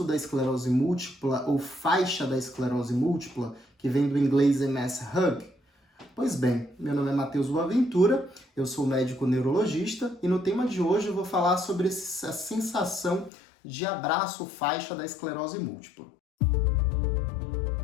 da esclerose múltipla ou faixa da esclerose múltipla, que vem do inglês MS Hug? Pois bem, meu nome é Matheus Boaventura, eu sou médico neurologista e no tema de hoje eu vou falar sobre essa sensação de abraço faixa da esclerose múltipla.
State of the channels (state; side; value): drops out; right; at 13.3 s